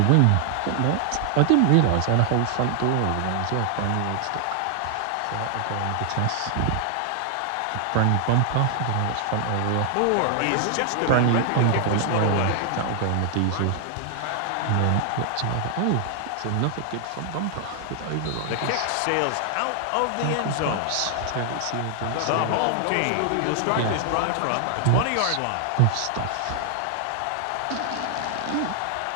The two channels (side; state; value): both; different; correlation 0.00